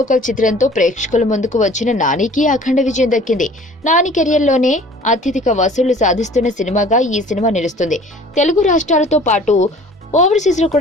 చిత్రంతో ప్రేక్షకుల ముందుకు వచ్చిన నానికి అఖండ విజయం దక్కింది. నాని కెరియర్ లోనే అత్యధిక వసూళ్లు సాధిస్తున్న సినిమాగా ఈ సినిమా నిలుస్తుంది. తెలుగు రాష్ట్రాలతో పాటు ఓవర్సీస్ లో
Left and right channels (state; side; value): normal; both; correlation 0.49